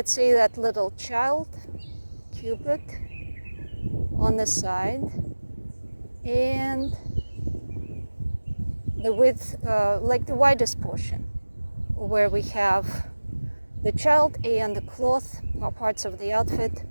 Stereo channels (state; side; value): inverted; both; correlation -1.00